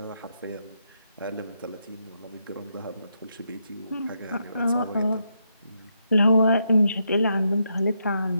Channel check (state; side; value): inverted; both; correlation -0.81